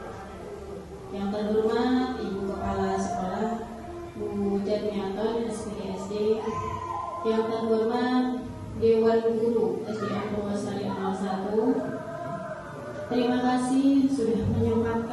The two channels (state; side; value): identical; both; correlation 1.00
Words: Yang terhormat Ibu Kepala Sekolah Bu Jatmiaton SPD. Yang terhormat Dewan Guru SDN Purwosari 01. Terima kasih sudah